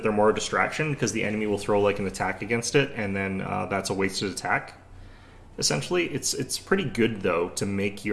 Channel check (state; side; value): identical; both; correlation 1.00